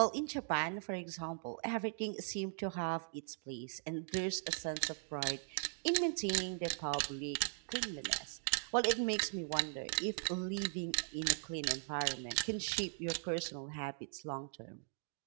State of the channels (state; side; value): silent; left; digital silence